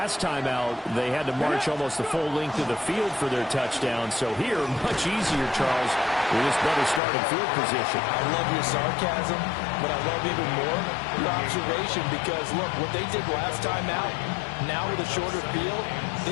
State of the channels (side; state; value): right; drops out; at 7.0 s